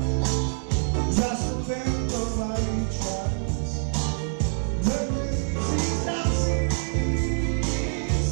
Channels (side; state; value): left; silent; digital silence